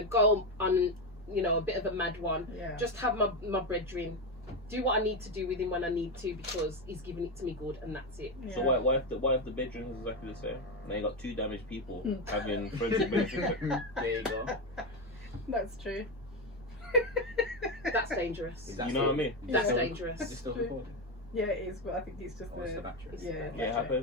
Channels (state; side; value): normal; both; correlation 0.12